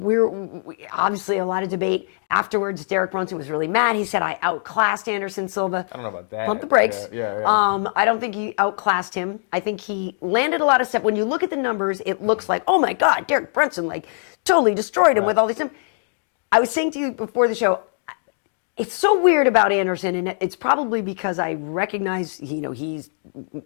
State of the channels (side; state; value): right; silent; digital silence